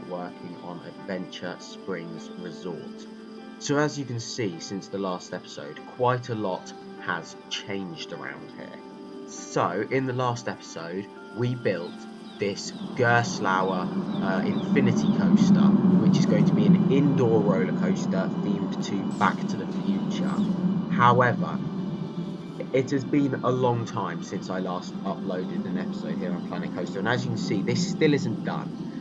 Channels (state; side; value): identical; both; correlation 1.00